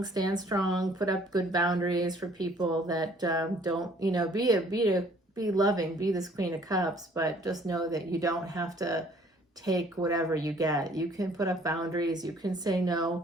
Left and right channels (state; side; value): normal; both; correlation 0.58